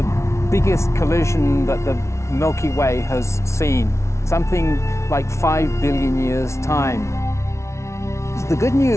biggest collision that the Milky Way has seen, something like 5 billion years' time. The good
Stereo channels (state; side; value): late; right; 0.13 ms